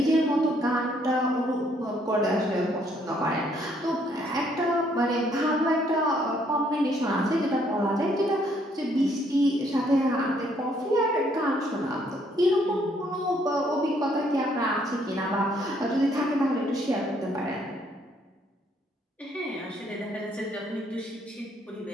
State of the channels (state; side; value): normal; both; correlation 0.68